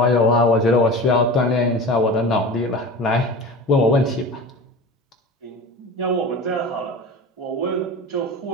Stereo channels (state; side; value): normal; both; correlation 0.33